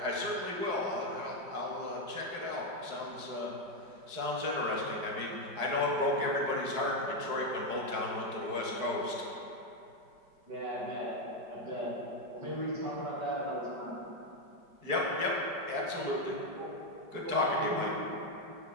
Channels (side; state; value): left; late; 5.2 ms